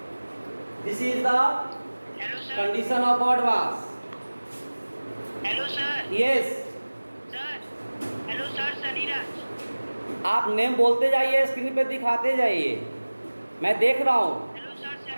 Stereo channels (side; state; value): both; inverted; correlation -1.00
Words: This is the condition of odd mass. Hello sir. Yes, sir hello sir, Sunnyraj. आप नेम बोलते जाइए, स्क्रीन पे दिखाते जाइए, मैं देख रहा हूँ। Hello sir,